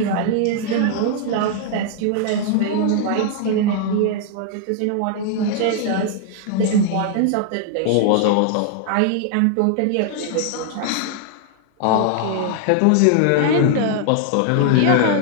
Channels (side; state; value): both; different; correlation 0.00